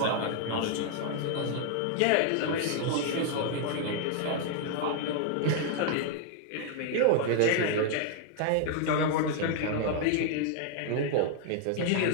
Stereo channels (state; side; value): different; both; correlation 0.00